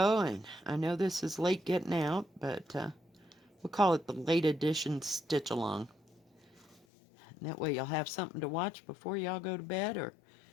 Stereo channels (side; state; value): right; drops out; at 6.9 s